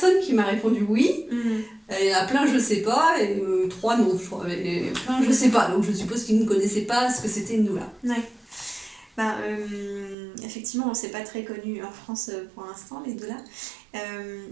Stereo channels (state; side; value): drops out; left; at 10.2 s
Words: qui m'a répondu oui. Il y en a plein, je sais pas, et 3 non, je crois. Et plein, je sais pas. Donc, je suppose qu'ils ne connaissaient pas ce que c'était une doula. Ouais. Effectivement, c'est pas très connu en France pour l'instant, les doulas.